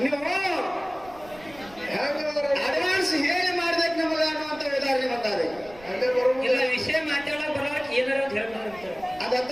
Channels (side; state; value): right; noise; rumble, 22 dB below the sound